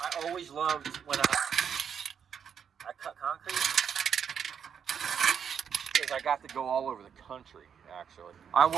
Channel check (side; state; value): left; quieter; 7.6 dB